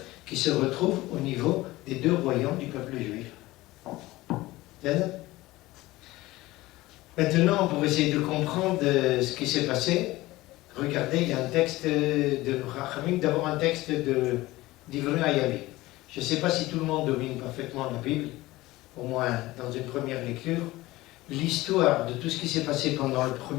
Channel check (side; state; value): right; quieter; 18.7 dB